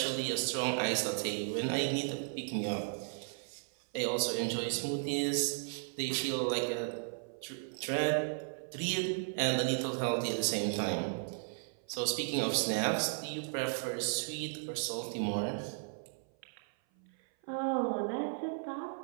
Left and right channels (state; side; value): silent; left; 54 dB below the other